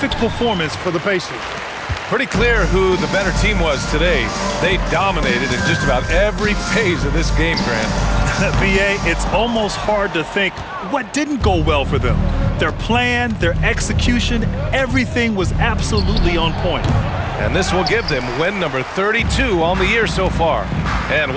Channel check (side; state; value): both; identical; correlation 1.00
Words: performance for the Pacers. Pretty clear who the better team was today. They dominated in just about every phase of this game, Grant. VA, it's almost hard to think what didn't go well for them. Their plan, their execution, everything was absolutely on point. And this will give them win number 32 on the year so far. And